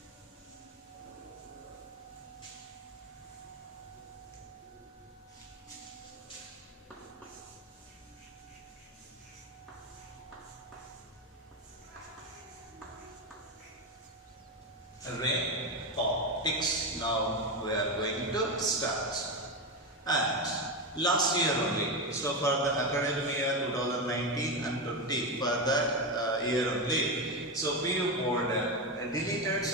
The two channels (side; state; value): both; normal; correlation 0.14